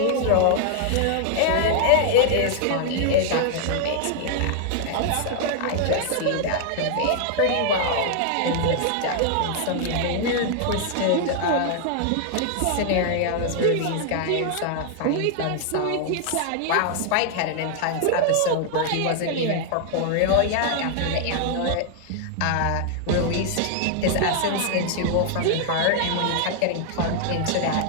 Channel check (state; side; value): different; both; correlation 0.00